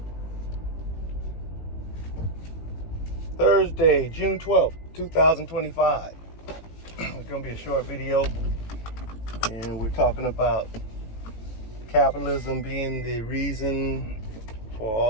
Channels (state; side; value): late; right; 18 ms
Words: Thursday, June 12th, 2025. It's going to be a short video, and we're talking about capitalism being the reason for